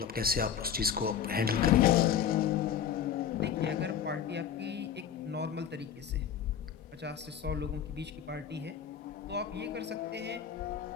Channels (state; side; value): quieter; right; 8.4 dB